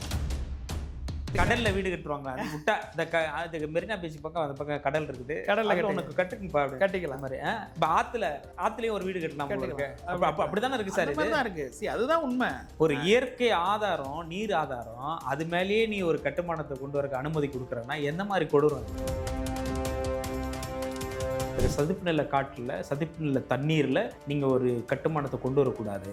கடல்ல வீடு கட்டுவாங்க, அது விட்டா இந்த மெரினா பீச் பக்கம் அந்த பக்கம் கடல் இருக்குது, கடல்ல உனக்கு கட்டிக்கலாம் மாதிரி. இப்போ ஆத்துலயும் ஒரு வீடு கட்டலாம் இருக்கு. அப்படித்தானே இருக்கு சார், இதுதான் இருக்கு. அதுதான் உண்மை. ஒரு இயற்கை ஆதாரம், நீர் ஆதாரம், அது மேலேயே நீ ஒரு கட்டுமானத்தை கொண்டு வரக்கு அனுமதி கொடுக்குறன்னா எந்த மாதிரி கொடூரம்? சதுப்பு நில காட்டுல, சதுப்பு நில தண்ணீர்ல நீங்க ஒரு கட்டுமானத்தை கொண்டு வரக்கூடாது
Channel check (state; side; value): identical; both; correlation 1.00